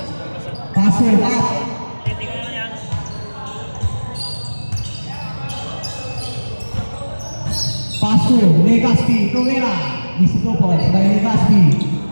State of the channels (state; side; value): inverted; both; correlation -1.00